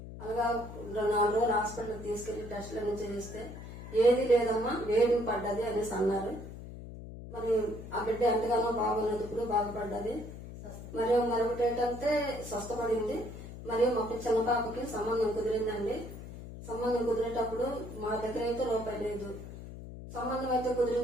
అలాగా 4 రోజులు హాస్పిటల్ తీసుకెళ్లి టెస్టులన్నీ చేయిస్తే ఏది లేదమ్మా, వేడి పడ్డది అనేసి అన్నారు. మరి ఆ బిడ్డ ఎంతగానో బాగున్నప్పుడు బాగుపడ్డది. మరియు మరొకటి ఏంటంటే స్వస్థపడింది. మరియు మా చిన్న పాపకి సంబంధం కుదిరిందండి. సంబంధం కుదిరేటప్పుడు మా దగ్గర అయితే రూపాయి లేదు. సంబంధం అయితే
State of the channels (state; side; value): noise; left; hum, 12 dB below the sound